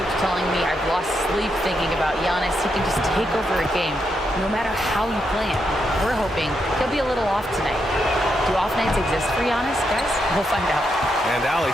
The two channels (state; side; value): normal; both; correlation 0.82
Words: telling me I've lost sleep thinking about Giannis. He can just take over a game, no matter how you play him. We're hoping he'll be a little off tonight. Do off nights exist for Giannis, guys? We'll find out. And Allie,